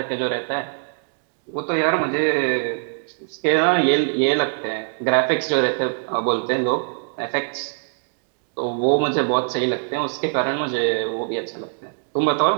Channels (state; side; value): silent; left; digital silence